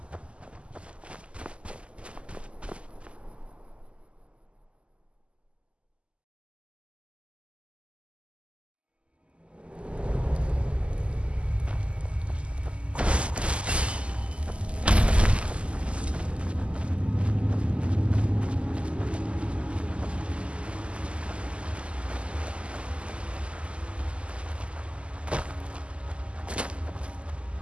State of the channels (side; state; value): left; late; 0.055 ms